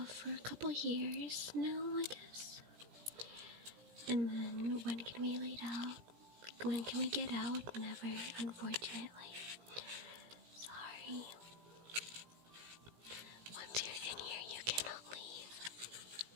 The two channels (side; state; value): left; late; 17 ms